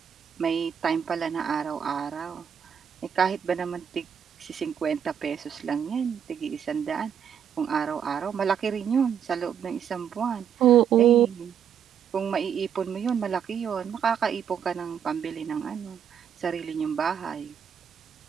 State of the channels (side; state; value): left; quieter; 8.2 dB